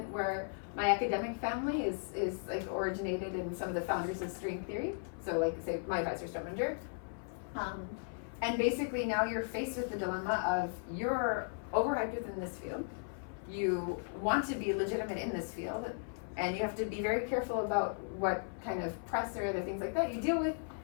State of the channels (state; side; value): silent; right; 54 dB below the other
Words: where my academic family is like originated in some of the founders of string theory. So like say my advisor Strominger. And basically now you're faced with the dilemma of you're overhyped within this field. You want to be legitimate in this field, and you have to be very careful about what kind of press or other things like that you deal with.